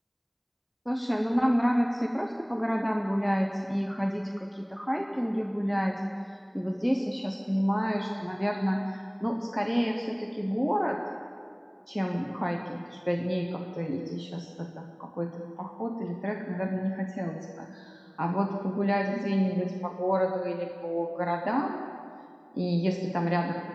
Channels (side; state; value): both; identical; correlation 1.00